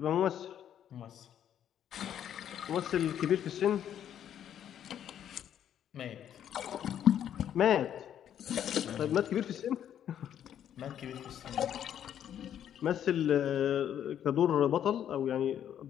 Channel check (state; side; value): quieter; right; 10.0 dB